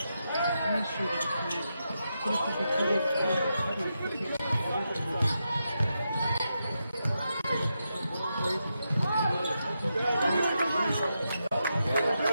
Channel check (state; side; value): inverted; both; correlation -0.86